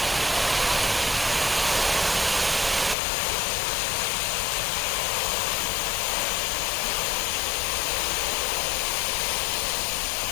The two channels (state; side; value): drops out; right; at 3.0 s